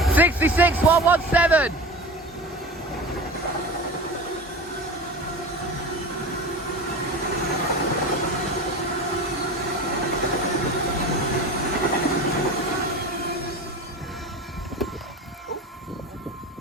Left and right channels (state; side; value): normal; both; correlation 0.31